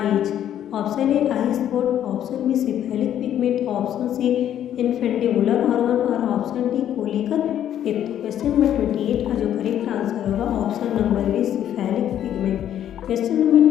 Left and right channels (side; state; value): right; quieter; 10.7 dB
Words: is, option A eye spot, option B cephalic pigment, option C infundibular organ और ऑप्शन डी कोलिकल टिप। तो क्वेश्चन नंबर 28 का जो करेक्ट आंसर होगा option number B cephalic pigment. Question number